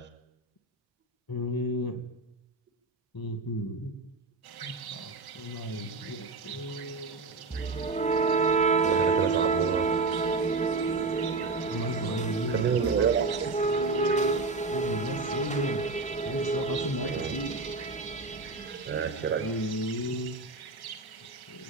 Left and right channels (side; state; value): left; quieter; 3.8 dB